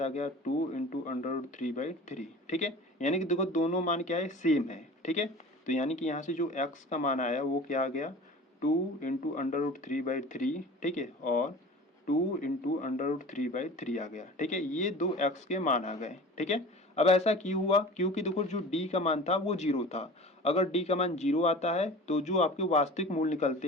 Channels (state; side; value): normal; both; correlation 0.39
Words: आ गया 2 इंटू अंडर रूट 3/3, ठीक है। यानी कि देखो दोनों मान क्या है, सेम है, ठीक है। तो यानी कि यहाँ से जो x का मान आया वो क्या आ गया, 2 इंटू अंडर रूट 3/3, ठीक है, और 2 इंटू अंडर रूट 3/3 आ गया, ठीक है। ये दो x के मान आ गए, ठीक है। अब ऐसा क्यों हुआ, क्योंकि देखो जो d का मान था वो 0 था। अगर d का मान 0 आता है तो जो आपके वास्तविक मूल्य